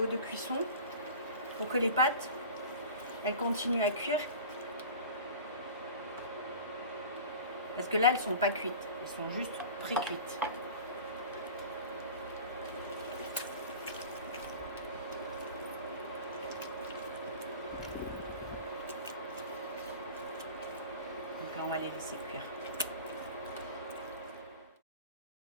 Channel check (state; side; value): inverted; both; correlation -0.37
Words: de cuisson pour que les pâtes, elles continuent à cuire. Parce que là, elles ne sont pas cuites. Elles sont juste pré-cuites. Donc là, on va les laisser cuire.